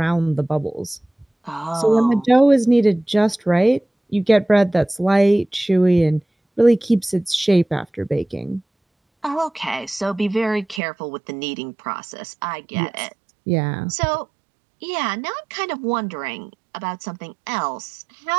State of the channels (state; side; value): drops out; left; at 10.8 s